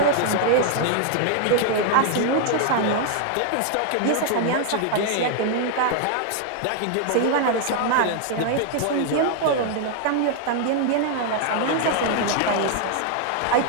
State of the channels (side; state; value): both; different; correlation 0.00